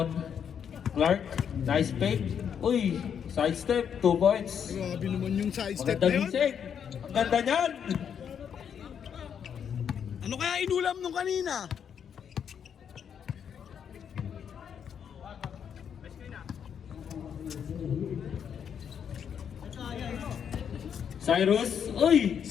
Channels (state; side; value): quieter; right; 7.9 dB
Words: Clark, nice fake. Uy, side step, 2 points. Grabe naman yung side step na Maganda yun. gising. Ang ganda niyan. Ano kaya inulam nung kanina? Cyrus, uy!